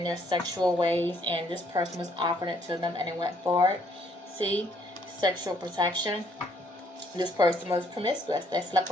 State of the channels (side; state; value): both; normal; correlation 0.66